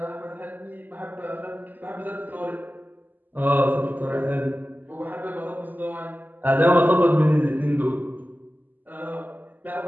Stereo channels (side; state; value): left; late; 0.086 ms